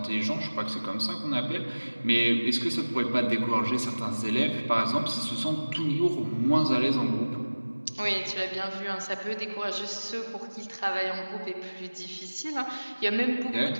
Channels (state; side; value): inverted; both; correlation -1.00